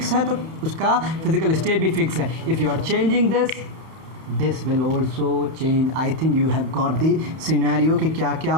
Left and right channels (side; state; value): left; late; 31 ms